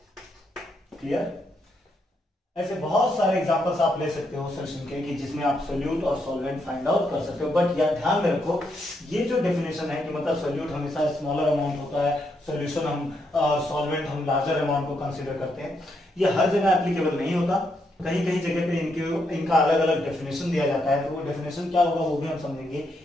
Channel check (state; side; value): normal; both; correlation 0.79